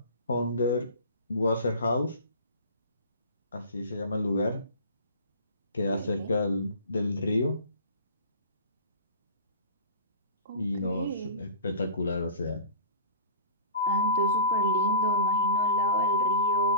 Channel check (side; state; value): both; inverted; correlation -0.38